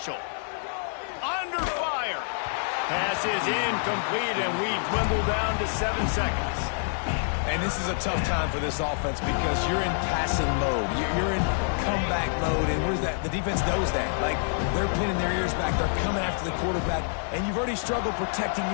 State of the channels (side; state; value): right; silent; digital silence